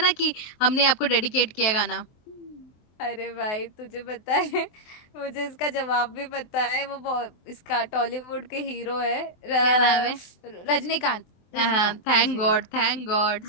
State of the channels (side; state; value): right; late; 24 ms